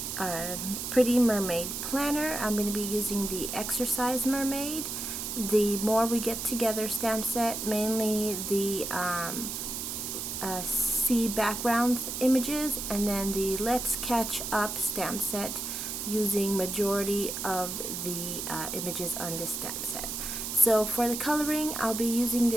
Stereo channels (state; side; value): noise; right; hiss, 5 dB below the sound